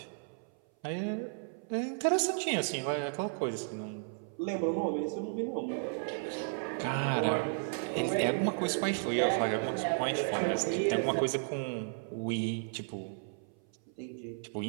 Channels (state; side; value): silent; left; 55 dB below the other